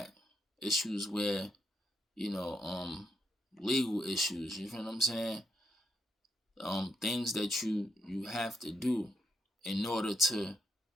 Issues where, you know, legal issues, you feel what I'm saying? Things that you have to do in order to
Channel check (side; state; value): both; normal; correlation 0.76